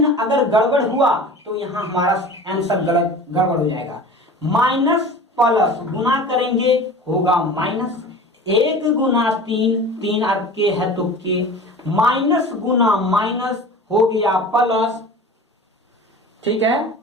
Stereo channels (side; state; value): both; normal; correlation 0.38